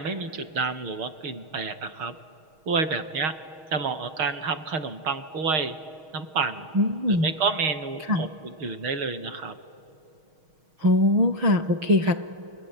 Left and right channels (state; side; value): late; left; 6.4 ms